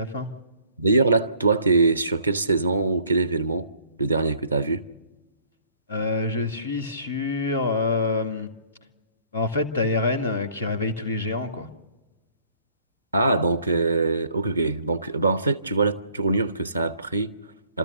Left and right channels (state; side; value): inverted; both; correlation -0.59